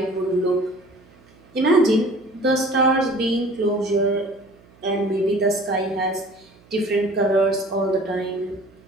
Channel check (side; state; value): right; noise; hum, 28 dB below the sound